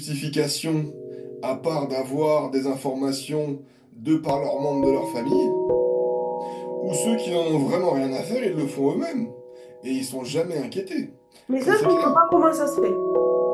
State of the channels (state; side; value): identical; both; correlation 1.00